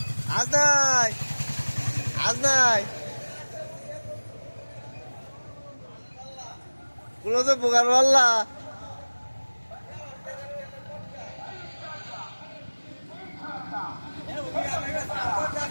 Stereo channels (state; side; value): inverted; both; correlation -1.00